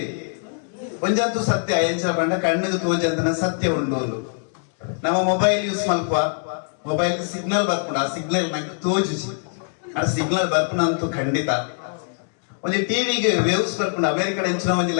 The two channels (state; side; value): silent; right; digital silence